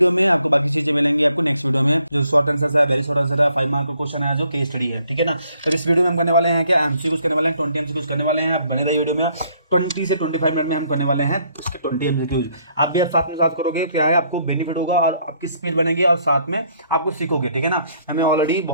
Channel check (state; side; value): inverted; both; correlation -0.68